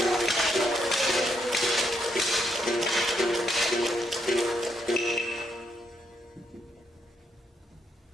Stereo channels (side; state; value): both; normal; correlation 0.77